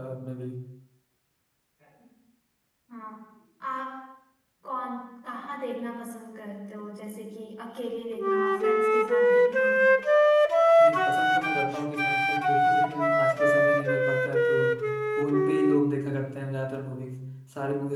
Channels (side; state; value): both; identical; correlation 1.00